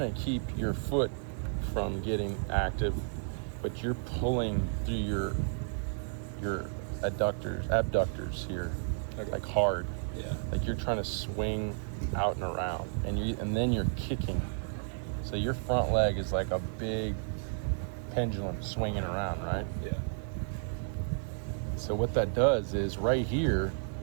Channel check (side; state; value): left; silent; digital silence